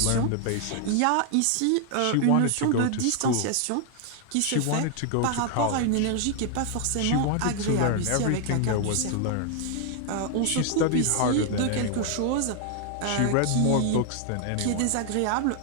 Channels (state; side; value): different; both; correlation 0.00